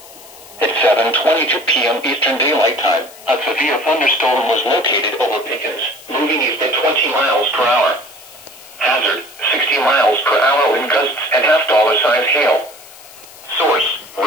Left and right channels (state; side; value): noise; left; hiss, 20 dB below the sound